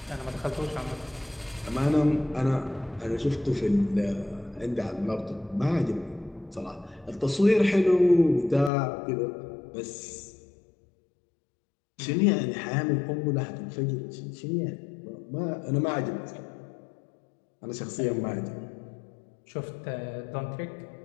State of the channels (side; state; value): right; drops out; at 8.7 s